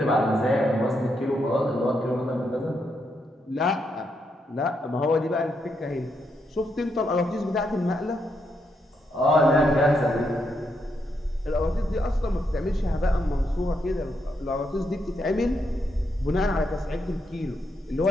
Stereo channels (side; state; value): both; normal; correlation 0.80